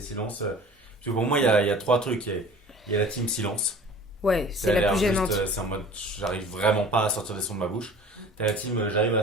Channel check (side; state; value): both; normal; correlation 0.44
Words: silences? Parce que pour moi il y a 3 trucs. Il y a la team silence. Ouais, c'est Ça a la l'air plus juste, gênante. c'est en mode j'arrive vraiment pas à sortir les sons de ma bouche. T'as la team j'arrive